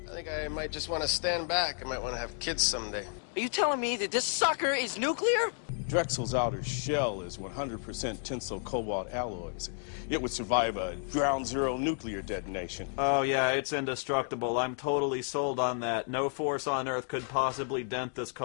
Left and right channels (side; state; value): right; silent; 57 dB below the other